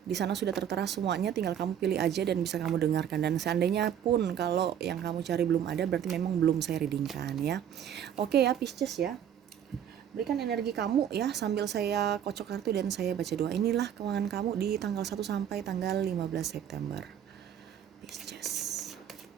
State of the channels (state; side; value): quieter; left; 9.3 dB